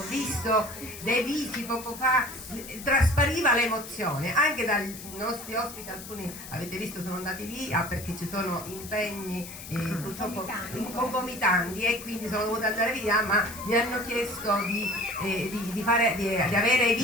visto dei visi poco fa, traspariva l'emozione anche dai nostri ospiti, alcuni avete visto sono andati via perché ci sono impegni purtroppo concomitanti e quindi sono dovuta andare via, ma mi hanno chiesto di avere i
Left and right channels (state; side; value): noise; left; hiss, 13 dB below the sound